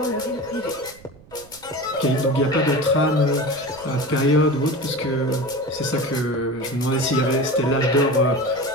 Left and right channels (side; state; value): right; noise; rumble, 24 dB below the sound